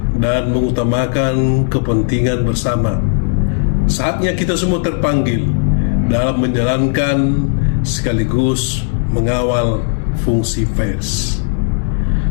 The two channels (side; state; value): right; silent; digital silence